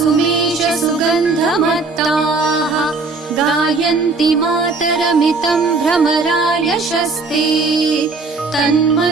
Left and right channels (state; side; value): quieter; left; 3.9 dB